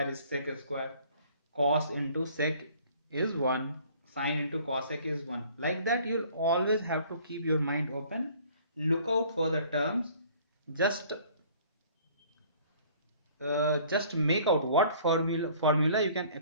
is sec square, cos into sec is 1, sine into cosec is 1. Like that, you'll always have to keep your mind open, look out for the terms, just just make out what formula you can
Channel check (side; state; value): both; inverted; correlation -0.54